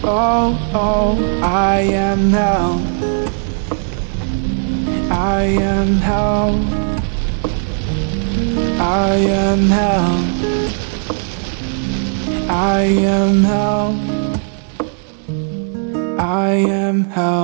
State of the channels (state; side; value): silent; left; 60 dB below the other